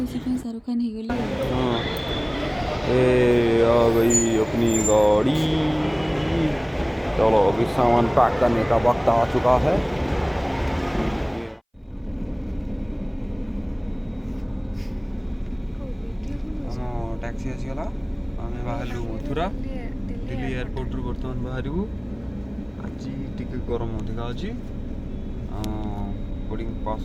पे शाहरुख खान हो गली। आ गई अपनी गाड़ी। चलो अभी सामान पैक करने का वक्त आ चुका है। टैक्सी आसीगला, आम बाहर मथुरा दिल्ली एयरपोर्ट बर्तमान बाहर। आज टी गरम अधिका अच्छी बोर्डिंग पास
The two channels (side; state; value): both; identical; correlation 1.00